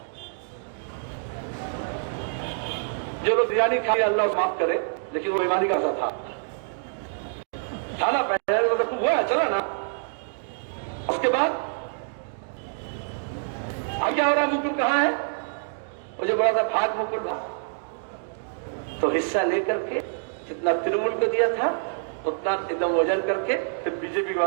जो लोग बिरयानी खाए अल्लाह माफ करे, लेकिन वो ईमानी का असर था ना, पहले तो खूब हुआ, चला ना। उसके बाद अब क्या हो रहा है, मुकुल कहां है? मुझे बोला था भाग मुकुल भाग, तो हिस्सा लेकर के जितना तृणमूल को दिया था उतना एकदम वजन करके फिर बीजेपी के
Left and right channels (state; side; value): silent; left; digital silence